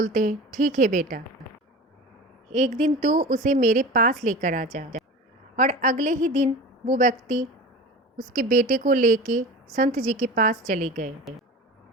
हैं, ठीक है बेटा, एक दिन तो उसे मेरे पास लेकर आ जा। और अगले ही दिन वो व्यक्ति उसके बेटे को लेके संत जी के पास चले गए।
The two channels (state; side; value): normal; both; correlation 0.34